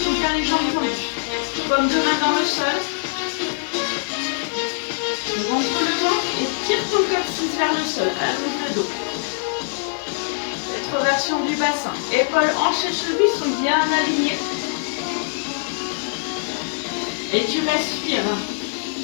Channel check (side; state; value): right; silent; digital silence